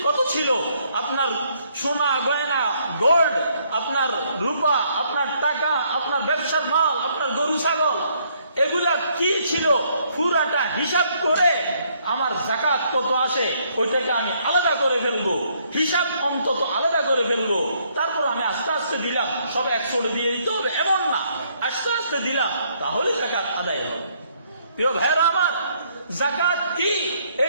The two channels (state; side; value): inverted; both; correlation -0.68